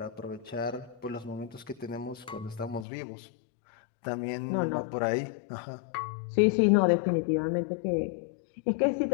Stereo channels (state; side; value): drops out; right; at 2.9 s